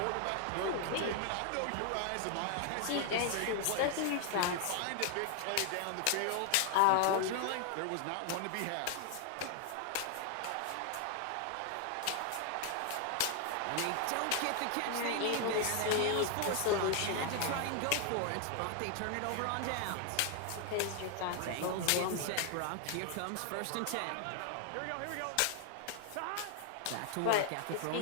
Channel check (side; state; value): both; different; correlation 0.00